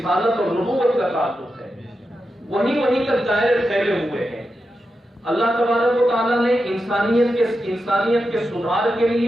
اور نبوت کا تعلق ہے. وہیں تک دائرے پھیلے ہوئے ہیں. اللہ تبارک و تعالیٰ نے انسانیت کے سدھار کے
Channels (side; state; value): both; normal; correlation 0.88